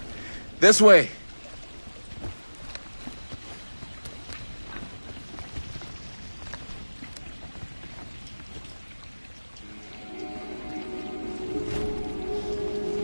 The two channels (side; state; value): both; inverted; correlation -1.00